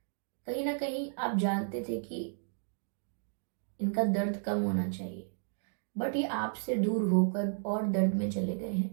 कहीं ना कहीं आप जानते थे कि इनका दर्द कम होना चाहिए, बट ये आपसे दूर होकर और दर्द में चले गए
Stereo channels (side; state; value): left; silent; digital silence